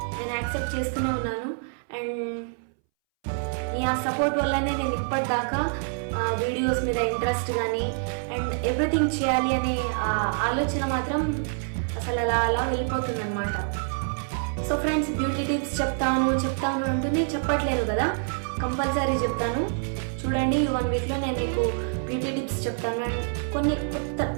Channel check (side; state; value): left; silent; 61 dB below the other